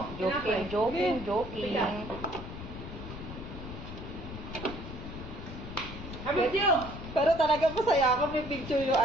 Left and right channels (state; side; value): noise; left; rumble, 10 dB below the sound